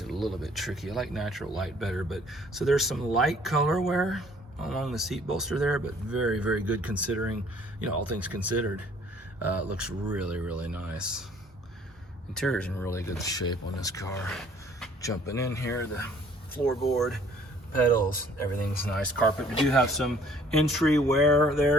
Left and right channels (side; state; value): both; normal; correlation 0.57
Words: a little bit tricky. I like natural light better, but so there's some light color wear along the seat bolster there, but very, very good considering, you know, all things considered. It looks really, really nice. Interior's in really good shape on this car. Jumping in here, the floorboard, pedals, everything's nice. Carpet, we do have some entry wear